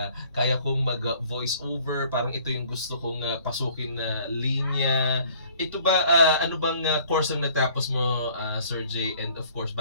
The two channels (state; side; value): inverted; both; correlation -0.56